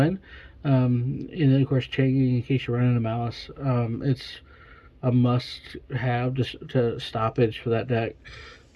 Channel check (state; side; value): identical; both; correlation 1.00